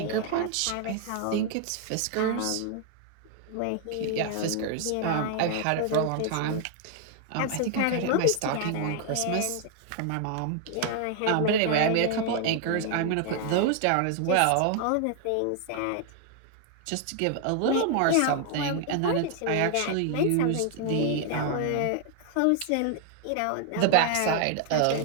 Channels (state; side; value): different; both; correlation 0.00